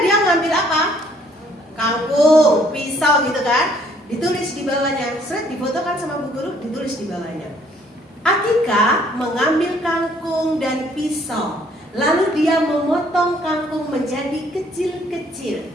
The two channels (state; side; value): normal; both; correlation 0.63